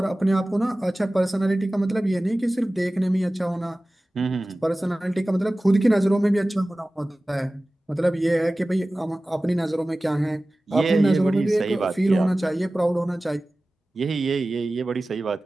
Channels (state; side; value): normal; both; correlation 0.97